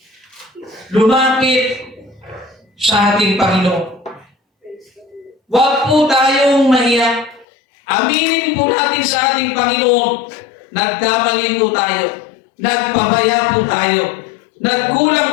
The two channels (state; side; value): drops out; right; at 7.5 s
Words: lumapit sa ating Panginoon. Huwag po tayong mahiya. Aminin po natin sa ating Panginoon, nagkamali po tayo, nagpabaya po tayo,